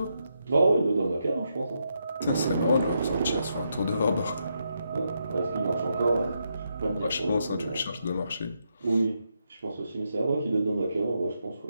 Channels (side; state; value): both; inverted; correlation -0.81